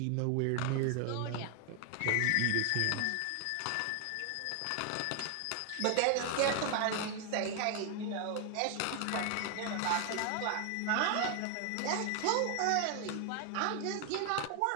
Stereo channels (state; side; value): different; both; correlation 0.00